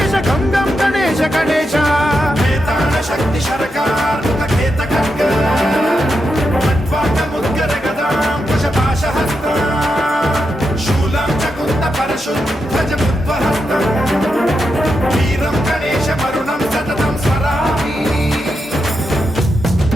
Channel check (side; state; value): both; normal; correlation 0.86